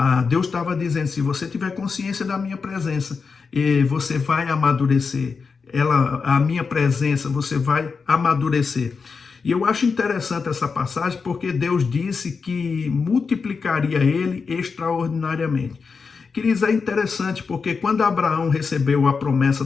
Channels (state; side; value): quieter; right; 5.1 dB